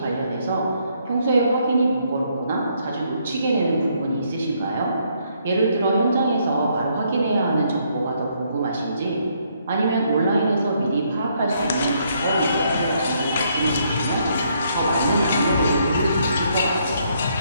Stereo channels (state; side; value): inverted; both; correlation -0.71